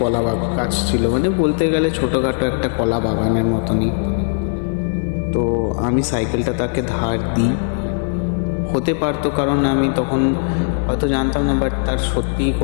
গাছ ছিল, মানে বলতে গেলে ছোটোখাটো একটা কলা বাগানের মতনই। তো আমি সাইকেলটা তাকে ধার দিই। হতে পারতো, কারণ আমি তখন হয়তো জানতাম না, বাট তার সত্যিই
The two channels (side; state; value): right; silent; 67 dB below the other